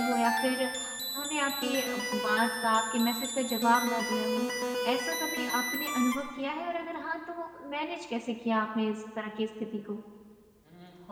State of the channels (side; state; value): both; identical; correlation 1.00